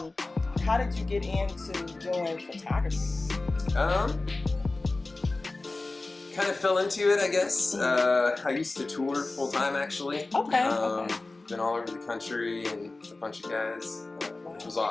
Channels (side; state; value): right; quieter; 3.2 dB